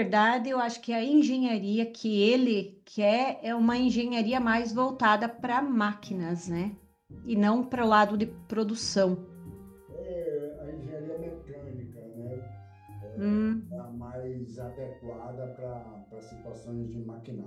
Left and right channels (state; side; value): identical; both; correlation 1.00